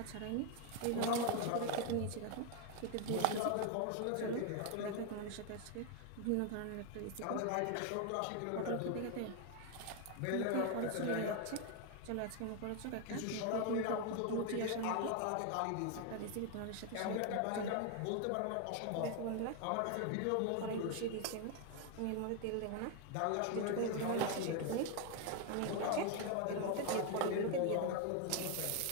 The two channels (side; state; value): both; different; correlation 0.01